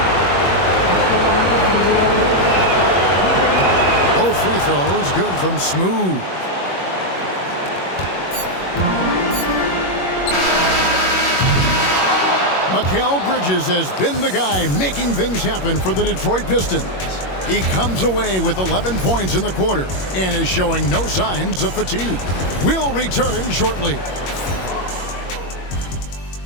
Both free throws good from Smooth. Mikal Bridges has been the guy making things happen for the Detroit Pistons. He comes away with 11 points in the quarter and is showing no signs of fatigue. We'll return shortly.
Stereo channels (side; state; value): right; late; 21 ms